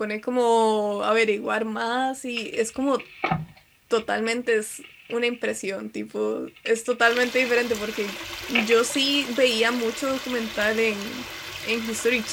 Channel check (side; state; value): both; identical; correlation 1.00